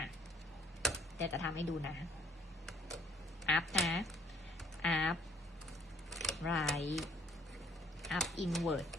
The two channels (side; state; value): both; normal; correlation 0.59